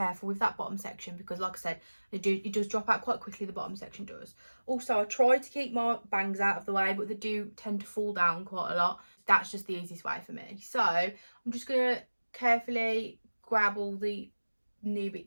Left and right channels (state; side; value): inverted; both; correlation -1.00